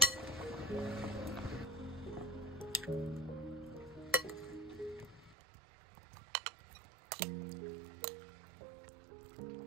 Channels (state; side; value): drops out; left; at 5.4 s